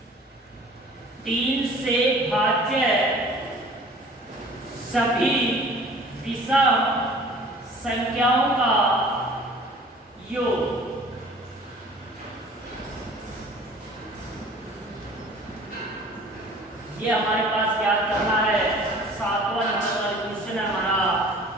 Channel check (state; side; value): normal; both; correlation 0.48